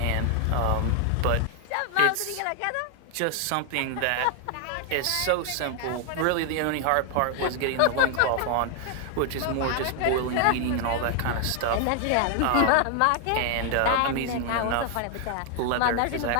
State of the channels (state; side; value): different; both; correlation 0.00